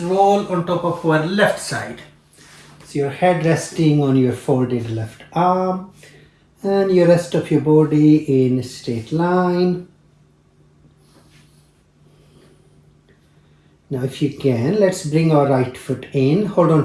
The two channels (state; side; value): identical; both; correlation 1.00